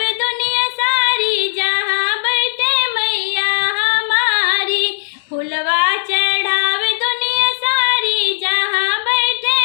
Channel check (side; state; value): right; silent; digital silence